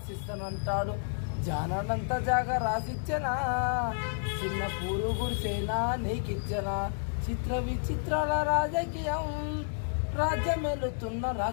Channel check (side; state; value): right; silent; digital silence